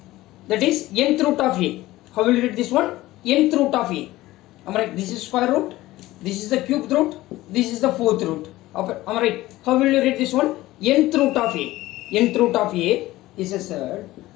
that is nth root of a, how will you read this one? Nth root of a. Am I right? This is square root, this is the cubed root, this is the fourth root. Am I right? How will you read this one? Nth root of a. Nth root of a is a surd.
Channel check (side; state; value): right; quieter; 17.2 dB